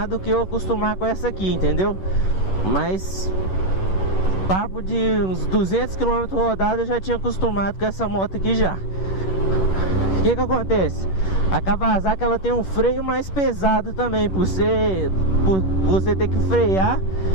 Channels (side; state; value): right; late; 11 ms